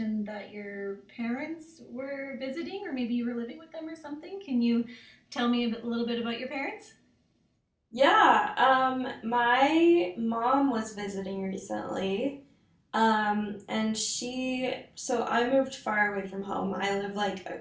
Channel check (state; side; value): identical; both; correlation 1.00